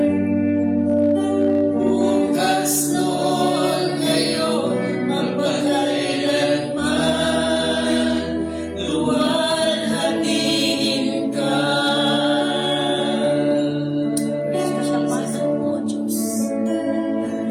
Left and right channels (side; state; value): both; identical; correlation 1.00